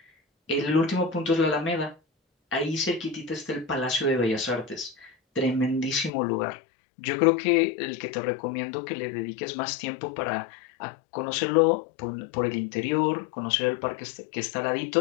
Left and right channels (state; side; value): drops out; right; at 6.1 s